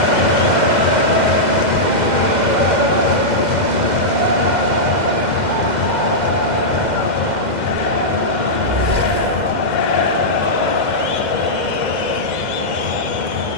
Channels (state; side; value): late; left; 2.0 ms